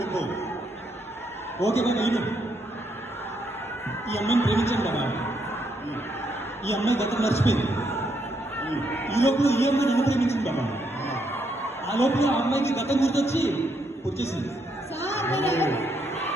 Okay baba ini. ఈ అమ్మాయిని ప్రేమించాను బాబా. ఈ అమ్మాయి గతం మర్చిపోయింది. ఈ లోపల ఈ అమ్మాయి నన్ను ప్రేమించింది బాబా. ఆ లోపల ఆ అమ్మాయికి గతం గుర్తొచ్చి వచ్చేసింది.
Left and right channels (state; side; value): normal; both; correlation 0.76